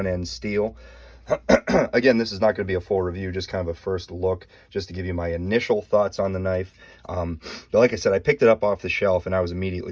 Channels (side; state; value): both; identical; correlation 1.00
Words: steel. Again, this is not going to be a full review, just kind of a first look, just to give you my initial thoughts on the knife. But like I said, I picked it up off the shelf and I was immediately